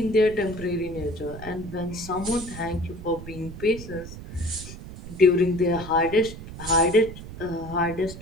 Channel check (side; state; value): right; noise; rumble, 12 dB below the sound